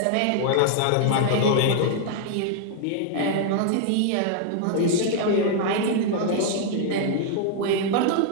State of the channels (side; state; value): both; different; correlation 0.00